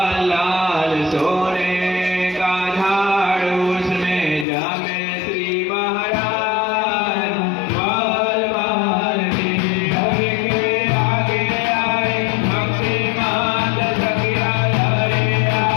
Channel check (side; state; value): right; drops out; at 4.5 s